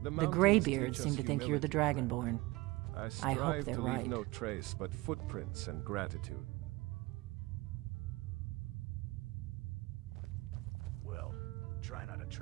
The Greybeards seem to think you're the Dragonborn. I hope they're to right. leave no trace but footprints and gratitude. Well, try not to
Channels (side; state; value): left; quieter; 21.4 dB